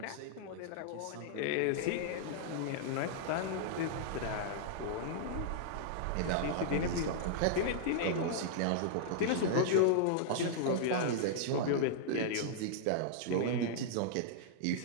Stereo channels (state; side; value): different; both; correlation -0.01